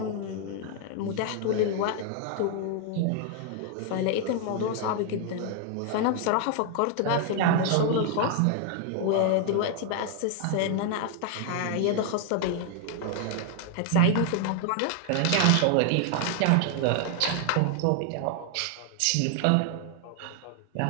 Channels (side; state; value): both; different; correlation 0.00